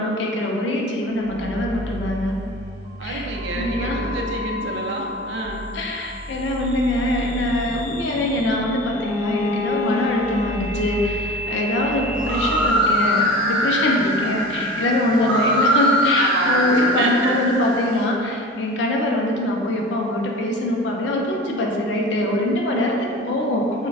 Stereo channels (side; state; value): both; normal; correlation 0.36